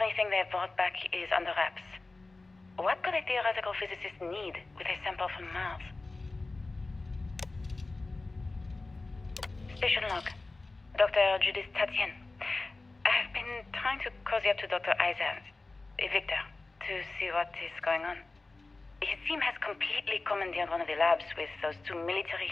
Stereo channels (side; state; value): right; quieter; 3.4 dB